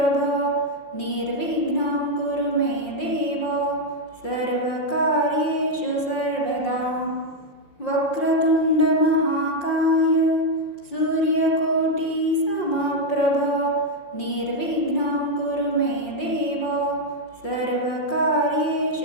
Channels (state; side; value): late; right; 5.6 ms